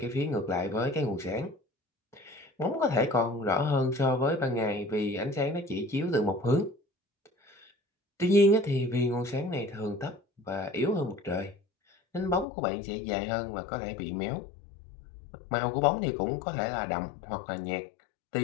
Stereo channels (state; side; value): drops out; right; at 12.5 s